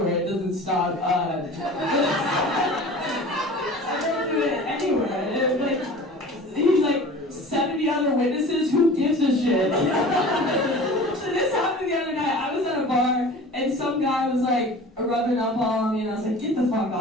It doesn't stop. I don't do it anywhere. He's like 70 other witnesses. Who gives a shit? So this happened the other night. I was at a bar and some guy was like rubbing up on me, and I was like, get the fuck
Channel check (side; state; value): both; normal; correlation 0.40